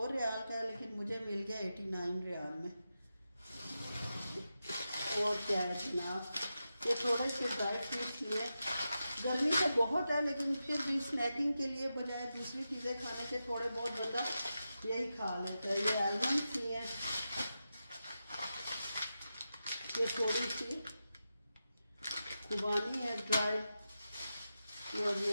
रियाल का है, लेकिन मुझे मिल गया 89 रियाल में। और क्या है जनाब, ये थोड़े से ड्राई फ्रूट्स लिए। गर्मी तो बहुत है, लेकिन फिर भी स्नैकिंग के लिए बजाय दूसरी चीज़ें खाने से थोड़े बहुत बंदा यही खा लेता है। ये आलमंड्स लिए, ये थोड़ी सी खुबानी है ड्राई, और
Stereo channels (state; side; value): inverted; both; correlation -0.90